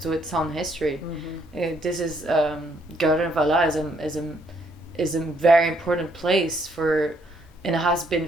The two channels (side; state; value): both; normal; correlation 0.70